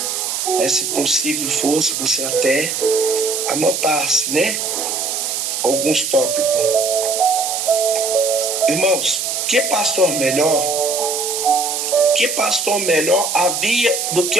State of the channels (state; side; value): noise; right; hiss, 2 dB below the sound